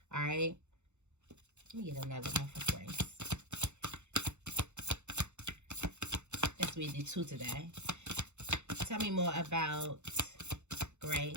All right. Let me get another one for grace. Let's read the 2 today. Tell me more about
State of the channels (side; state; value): left; late; 0.83 ms